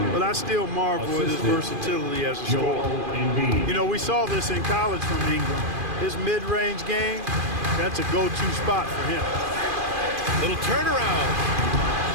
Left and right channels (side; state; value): left; late; 2.5 ms